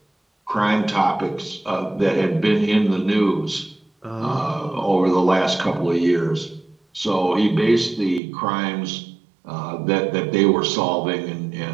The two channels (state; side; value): drops out; left; at 8.2 s